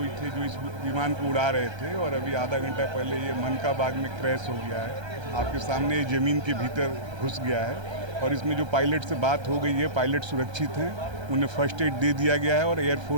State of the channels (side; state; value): left; late; 1.3 ms